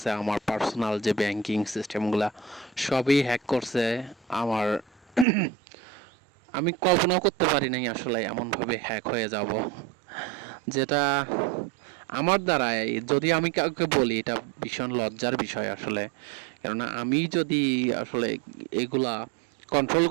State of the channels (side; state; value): left; drops out; at 5.2 s